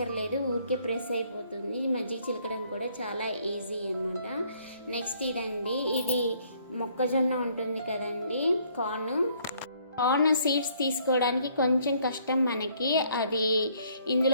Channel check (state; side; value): inverted; both; correlation -0.64